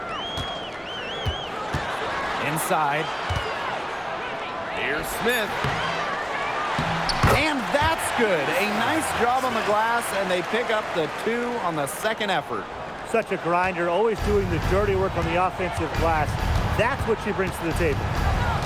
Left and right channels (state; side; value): identical; both; correlation 1.00